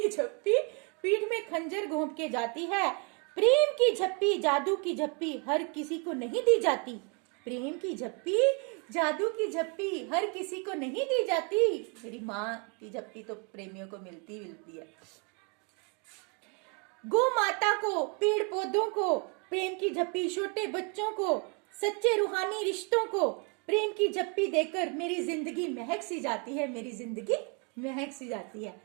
झप्पी पीठ में खंजर घोंप के जाती है। प्रेम की झप्पी, जादू की झप्पी हर किसी को नहीं दी जाती। प्रेम की झप्पी, जादू की झप्पी हर किसी को नहीं दी जाती। मेरी माँ की झप्पी तो प्रेमियों को मिलती है। गौ माता को, पेड़ पौधों को प्रेम की झप्पी, छोटे बच्चों को, सच्चे रूहानी रिश्तों को प्रेम की झप्पी देकर मेरी जिंदगी महक सी जाती है। मेरी जिंदगी महक सी जाती है।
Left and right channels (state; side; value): quieter; left; 33.9 dB